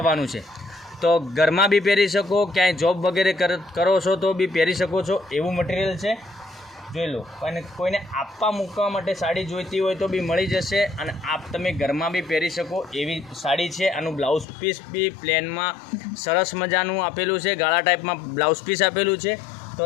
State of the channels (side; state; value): right; drops out; at 14.5 s